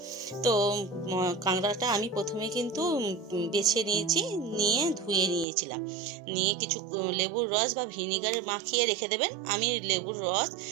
তো কাঁকড়াটা আমি প্রথমে কিন্তু বেছে নিয়েছি, নিয়ে ধুয়ে নিয়েছিলাম। নিয়ে কিছু লেবুর রস বা ভিনিগার মাখিয়ে রেখে দেবেন। আমি লেবুর রস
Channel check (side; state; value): left; drops out; at 5.5 s